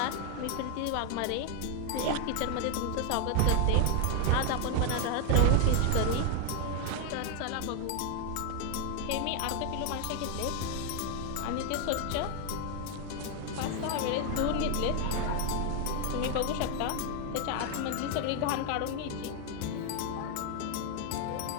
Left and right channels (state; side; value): different; both; correlation 0.01